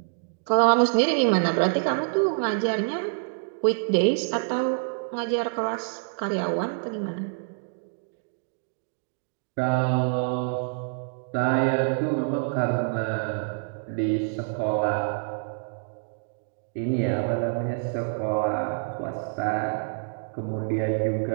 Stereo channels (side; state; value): left; silent; digital silence